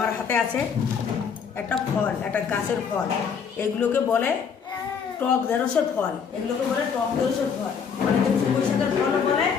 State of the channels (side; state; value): right; quieter; 6.6 dB